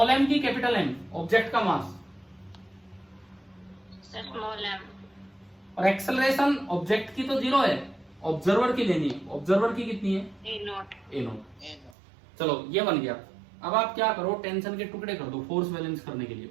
m की कैपिटल M, ऑब्जेक्ट का मास, स्मॉल m, और एक्सेलरेशन ऑब्जेक्ट की तो 0 है, ऑब्जर्वर की लेनी है। ऑब्जर्वर की कितनी है? a0। चलो ये बन गया। अब आप क्या करो, टेंशन के टुकड़े कर दो फोर्स बैलेंस करने के लिए,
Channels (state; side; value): drops out; left; at 12.0 s